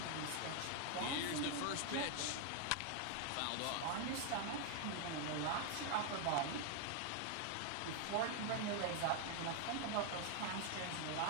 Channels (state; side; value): different; both; correlation 0.00